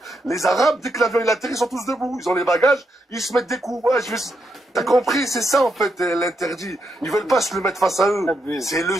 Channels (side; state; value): both; normal; correlation 0.81